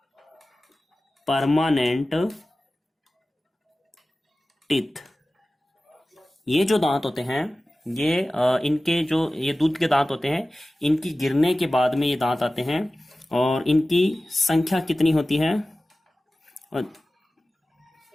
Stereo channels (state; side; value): normal; both; correlation 0.96